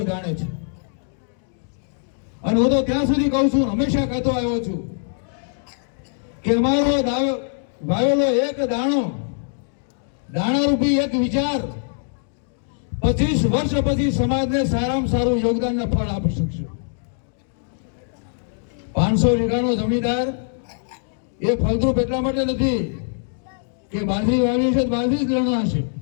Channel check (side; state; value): right; silent; digital silence